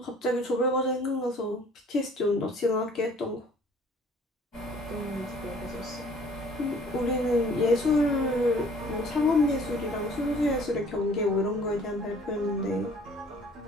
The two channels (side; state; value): both; normal; correlation 0.54